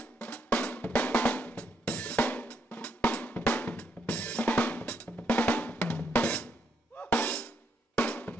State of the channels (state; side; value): normal; both; correlation 0.76